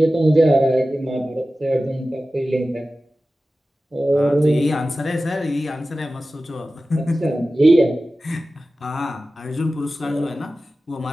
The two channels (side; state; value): both; normal; correlation 0.95